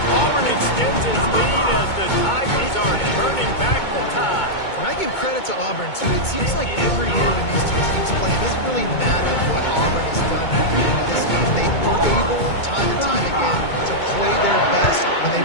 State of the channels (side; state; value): right; late; 2.2 ms